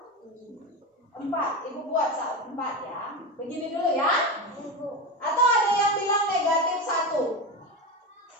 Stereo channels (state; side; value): normal; both; correlation 0.19